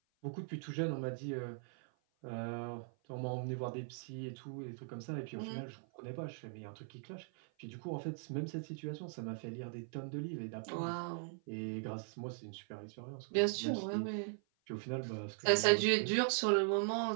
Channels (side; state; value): left; silent; 51 dB below the other